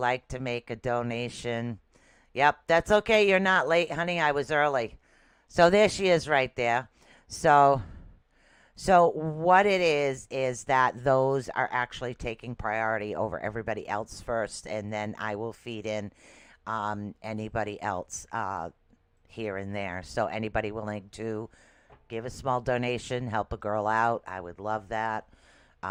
to make a donation, yep, that's okay. You're not late, honey. I was early. So there she is right there. So what it is that those are actually taking priority over everybody else first, and then I will feed in anybody else here and there. So anybody willing to give a small donation, help a girl out, I would love that.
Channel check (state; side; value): identical; both; correlation 1.00